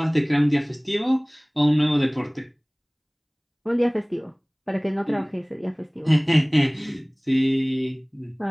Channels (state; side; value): identical; both; correlation 1.00